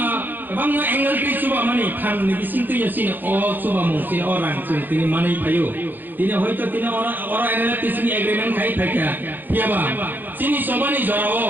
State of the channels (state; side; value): late; left; 0.089 ms